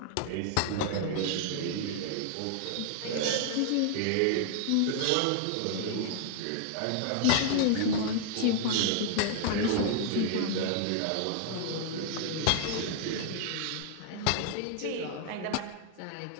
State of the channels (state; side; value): different; both; correlation 0.00